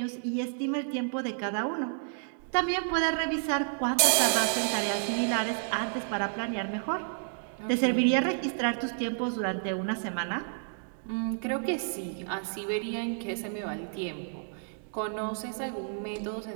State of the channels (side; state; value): left; silent; digital silence